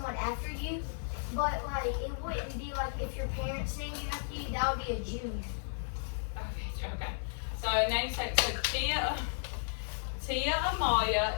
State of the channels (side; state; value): right; silent; digital silence